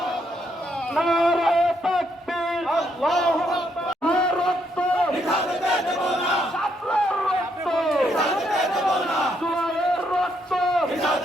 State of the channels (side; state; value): both; normal; correlation 0.75